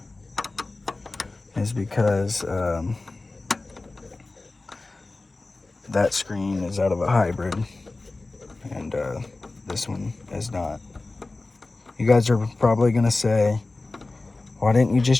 is because that screen is out of a hybrid, and this one is not. You guys are probably gonna say, why didn't you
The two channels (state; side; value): quieter; right; 3.3 dB